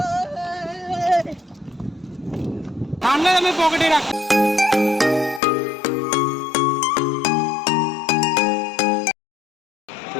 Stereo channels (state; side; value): drops out; right; at 5.4 s